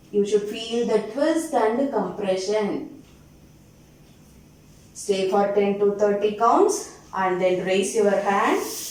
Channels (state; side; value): identical; both; correlation 1.00